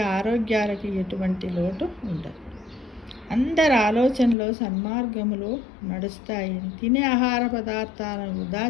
ఆరోగ్యాలకి ఎటువంటి లోటు ఉండదు. అందరి ఆలోచనలో సన్మార్గములో నడుస్తాయని, తినే ఆహార పదార్థాలను వృధా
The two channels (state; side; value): drops out; right; at 4.4 s